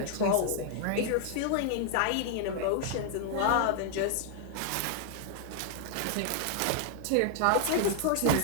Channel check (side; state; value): both; different; correlation 0.00